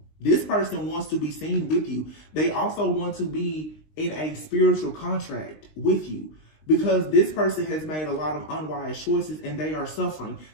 This person wants to be seen with you. They also want to be in a spiritual contract with you, because this person has made a lot of unwise choices and they are suffering.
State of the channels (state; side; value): late; right; 19 ms